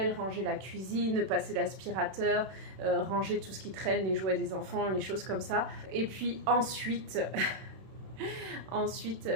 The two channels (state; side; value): late; left; 31 ms